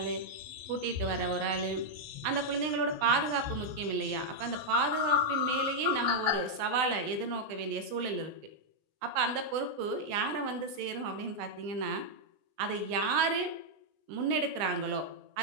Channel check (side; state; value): left; late; 20 ms